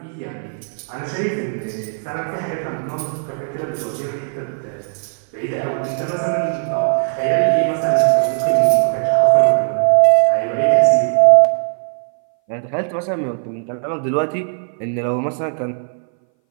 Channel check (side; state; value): left; silent; 61 dB below the other